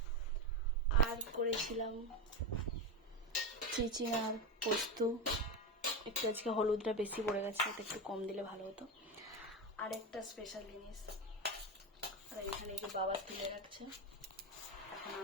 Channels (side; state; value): both; normal; correlation 0.16